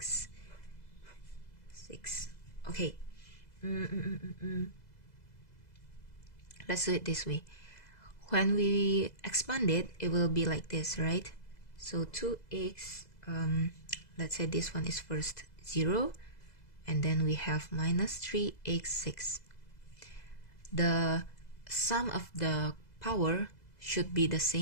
6. Okay. Let's do it this way. When we expand it, it will be like this, right? So 2x, let's say this one is first 0, and then we have minus 3x6. The sum of the power should be the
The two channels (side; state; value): right; late; 2.0 ms